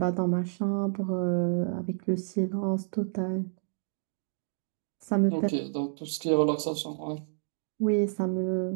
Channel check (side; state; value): left; silent; digital silence